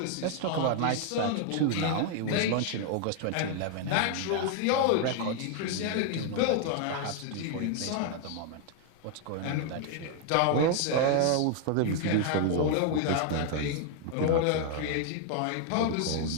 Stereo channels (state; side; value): different; both; correlation 0.00